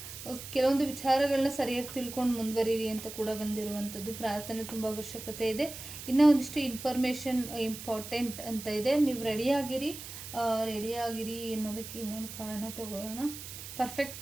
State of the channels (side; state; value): right; noise; hiss, 11 dB below the sound